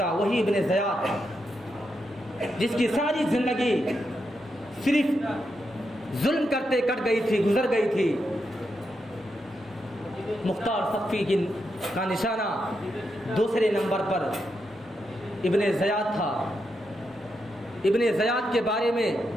وہی ابن زیاد۔ جس کی ساری زندگی صرف ظلم کرتے کٹ گئی تھی، گزر گئی تھی، مختار ثقفی کا نشانہ دوسرے نمبر پر ابن زیاد تھا۔ ابن زیاد کے بارے میں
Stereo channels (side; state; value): both; normal; correlation 0.84